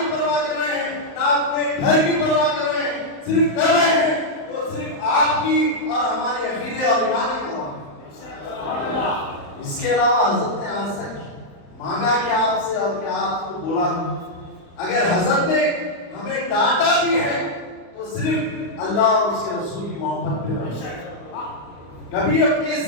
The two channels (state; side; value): late; right; 35 ms